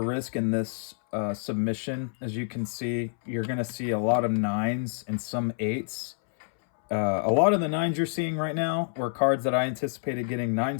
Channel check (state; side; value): silent; right; 60 dB below the other